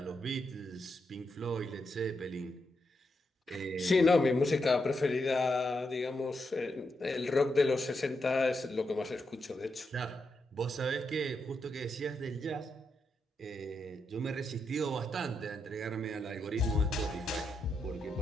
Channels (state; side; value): normal; both; correlation 0.83